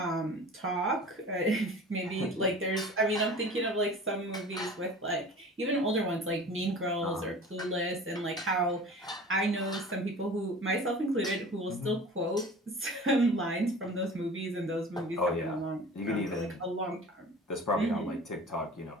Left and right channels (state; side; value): normal; both; correlation 0.40